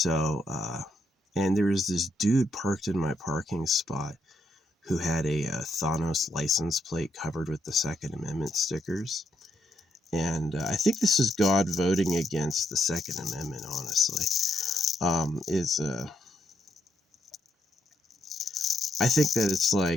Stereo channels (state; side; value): normal; both; correlation 0.76